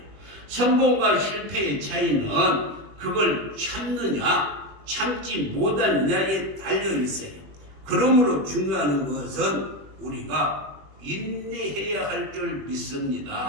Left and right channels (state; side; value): late; left; 21 ms